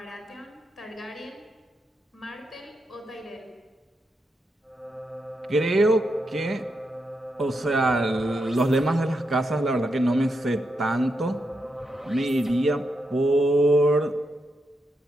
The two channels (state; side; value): normal; both; correlation 0.84